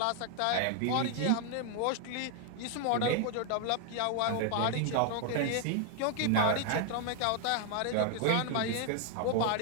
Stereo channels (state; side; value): different; both; correlation 0.00